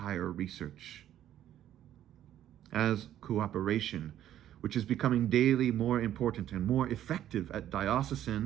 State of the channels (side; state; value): left; quieter; 11.7 dB